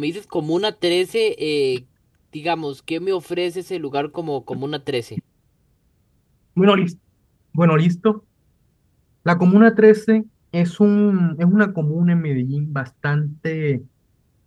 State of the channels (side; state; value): both; identical; correlation 1.00